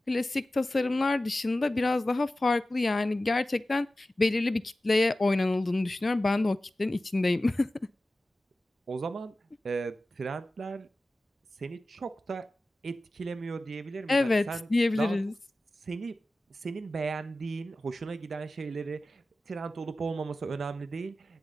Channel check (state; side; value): normal; both; correlation 0.95